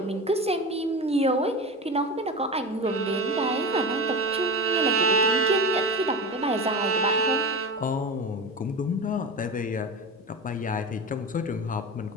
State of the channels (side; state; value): both; normal; correlation 0.26